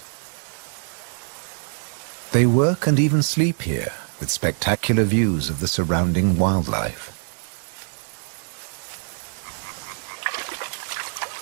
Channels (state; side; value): silent; left; digital silence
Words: They work and even sleep here, with spectacular views of the surrounding wildlife.